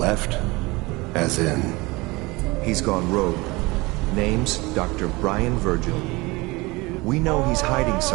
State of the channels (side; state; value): left; quieter; 23.4 dB